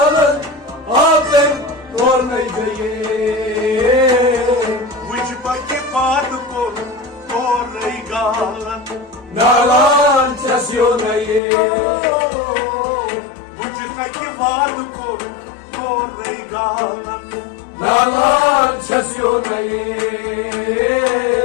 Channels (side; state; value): right; drops out; at 11.4 s